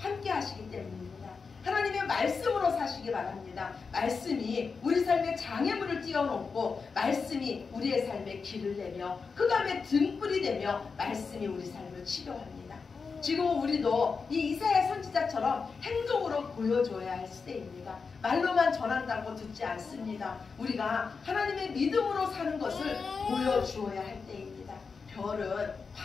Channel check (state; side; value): quieter; right; 5.0 dB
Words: 하시기 때문입니다. 하나님의 말씀으로 사시기 바랍니다. 말씀이 우리 삶의 장애물을 띄워놓고, 말씀이 우리의 삶에 길을 내며 흑암의 등불이 되며 말씀이 우리 삶을 치료합니다. 지금 우리도 이 이사야 선지자처럼 행동으로 보여줘야 할 시대입니다. 말로만 전한다고 듣지 않습니다. 우리가 하나님의 믿음으로 사는 것을 보여주어야 할 때입니다. 별은